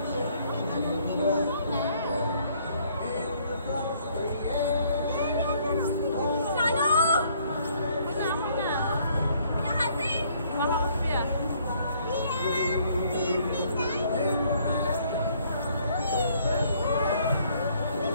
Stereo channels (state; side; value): inverted; both; correlation -0.64